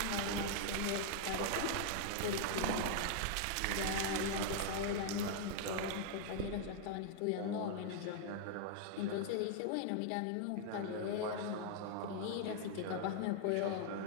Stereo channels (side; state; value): both; different; correlation -0.01